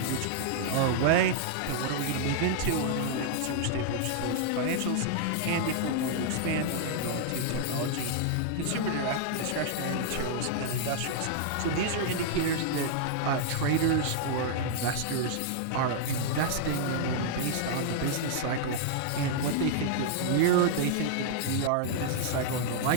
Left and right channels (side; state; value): both; different; correlation -0.01